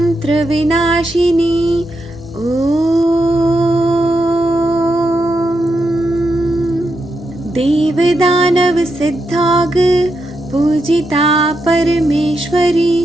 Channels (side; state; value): both; normal; correlation 0.84